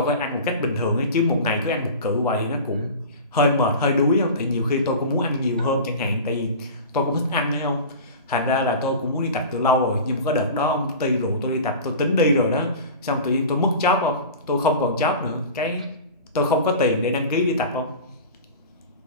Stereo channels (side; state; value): both; inverted; correlation -0.34